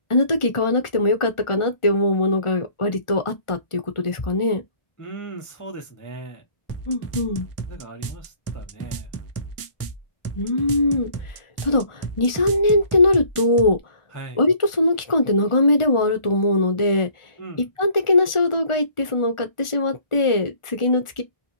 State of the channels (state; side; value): late; right; 1.4 ms